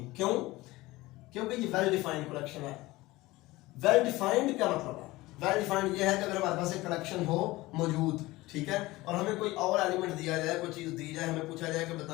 क्यों? क्योंकि ये वेल डिफाइंड कलेक्शन है। वेल डिफाइंड क्या मतलब है? वेल डिफाइंड ये है कि अगर हमारे पास एक कलेक्शन हो मौजूद, ठीक है, और हमें कोई और एलिमेंट दिया जाए, कोई चीज दी जाए, हमें पूछा जाए कि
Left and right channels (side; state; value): right; quieter; 19.5 dB